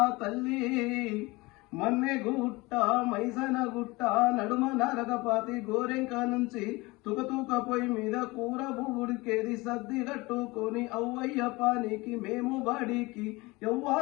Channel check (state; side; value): quieter; right; 22.9 dB